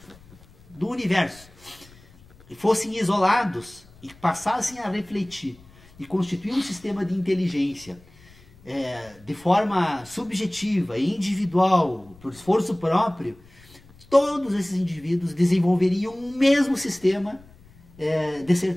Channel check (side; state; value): left; noise; rumble, 25 dB below the sound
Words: do universo, e fossem isolados e passassem a refletir e constituir um sistema de inteligência de forma subjetiva e individual, por esforço próprio, todos esses indivíduos desenvolveriam um mesmo sistema de